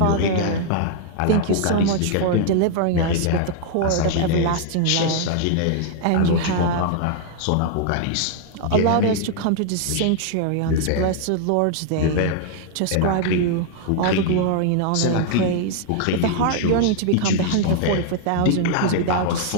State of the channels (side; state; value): both; different; correlation -0.01